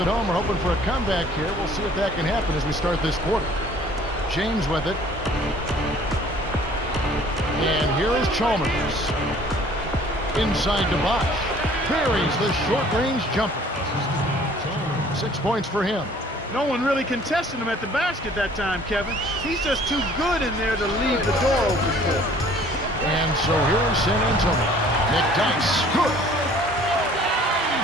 home are hoping for a comeback here. We'll see if that can happen as we start this quarter. James with it. And here is Chalmers. Inside to Bosch. Buries the short-range jumper. 6 points for him. No one really contested him at the basket that time, Kevin. He's just too good in there to leave the door open for him. And so here is San Antonio. McDyess. Good.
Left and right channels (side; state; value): both; normal; correlation 0.54